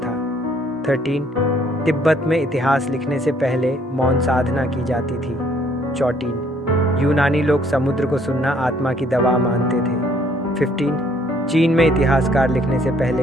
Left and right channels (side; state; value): both; normal; correlation 0.64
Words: 13 तिब्बत में इतिहास लिखने से पहले मौन साधना की जाती थी। 14 यूनानी लोग समुद्र को सुनना आत्मा की दवा मानते थे। 15 चीन में इतिहासकार लिखने से